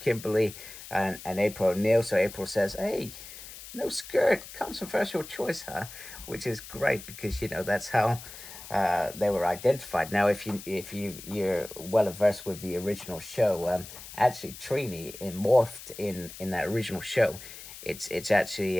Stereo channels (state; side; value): noise; left; hiss, 14 dB below the sound